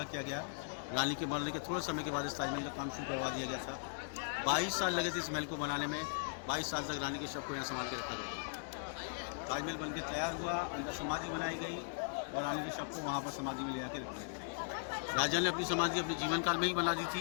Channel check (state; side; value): silent; right; digital silence